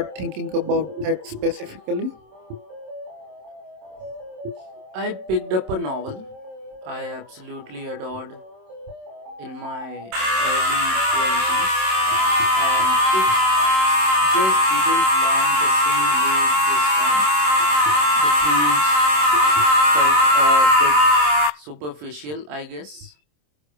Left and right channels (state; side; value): late; left; 27 ms